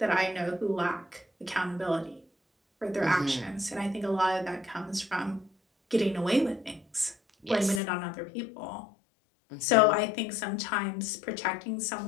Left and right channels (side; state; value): right; drops out; at 7.8 s